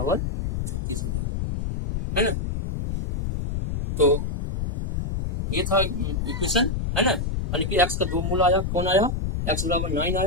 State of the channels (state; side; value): noise; left; rumble, 2 dB below the sound